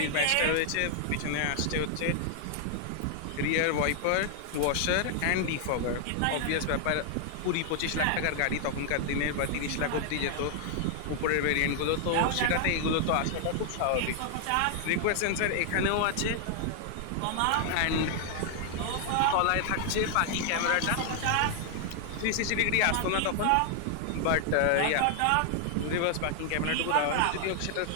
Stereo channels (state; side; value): different; both; correlation 0.00